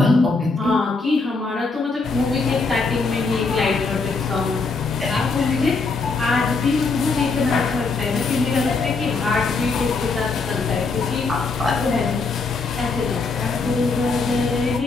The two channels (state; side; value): quieter; right; 4.1 dB